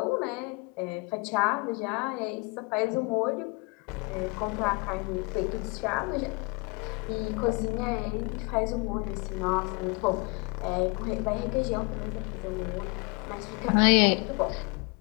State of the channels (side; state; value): right; quieter; 29.3 dB